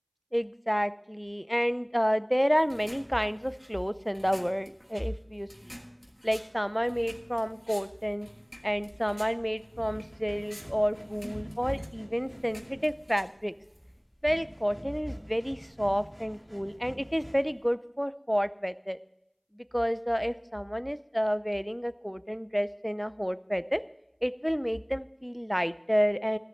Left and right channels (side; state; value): both; identical; correlation 1.00